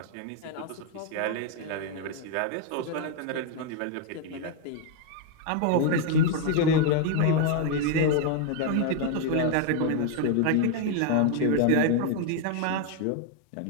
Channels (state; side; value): different; both; correlation 0.00